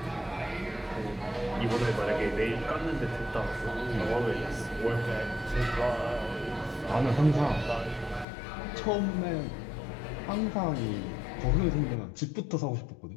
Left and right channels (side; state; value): right; drops out; at 8.2 s